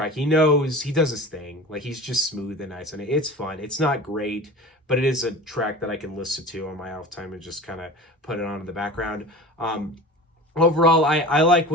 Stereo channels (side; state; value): both; normal; correlation 0.36